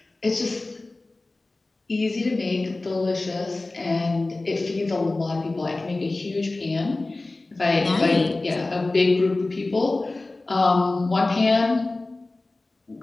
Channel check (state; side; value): quieter; right; 3.1 dB